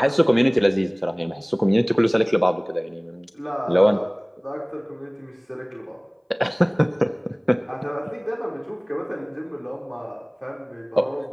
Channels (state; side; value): identical; both; correlation 1.00